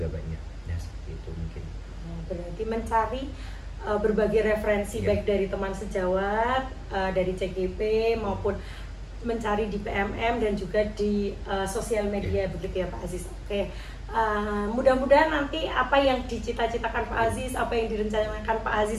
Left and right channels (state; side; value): identical; both; correlation 1.00